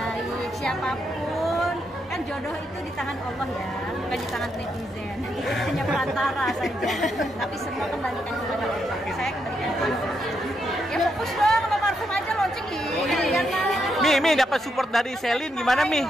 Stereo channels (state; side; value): normal; both; correlation 0.80